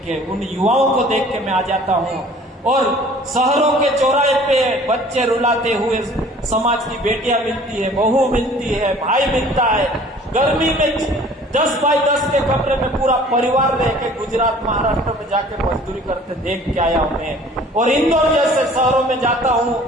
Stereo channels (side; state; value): both; normal; correlation 0.50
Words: के, उन युवाओं को देख के मैं आ जाता हूँ। और शहरों के चौराहे पे बच्चे रुलाते हुए समाज की बेटियां मिलती है, बहू मिलती है, भाई मिलता है। गर्मी में 10 बाई 10 के कमरे में पूरा परिवार रह के गुजरात महाराष्ट्र में जाके मजदूरी करते देख के आया हूं मैं। और इंदौर जैसे शहरों में जाता हूं,